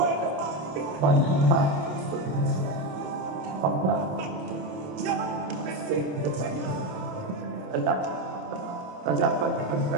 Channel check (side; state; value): left; late; 27 ms